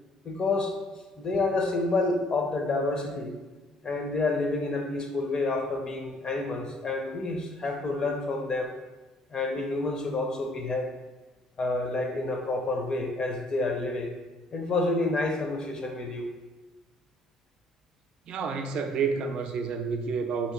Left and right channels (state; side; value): normal; both; correlation 0.61